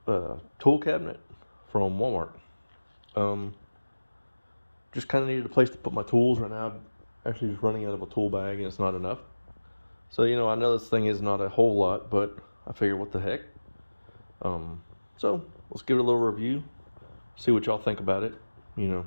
tool cabinet from Walmart. Just kind of needed a place to put my tools right now. I'm actually just running out of a tool bag and it's not enough. So, I know this thing is not a whole lot, but I figured what the heck. So let's give it a little review, see what y'all think about it,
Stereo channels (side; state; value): both; inverted; correlation -1.00